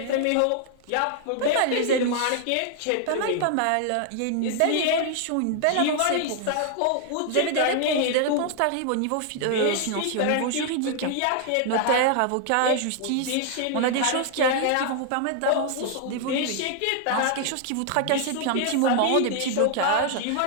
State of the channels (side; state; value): both; different; correlation 0.00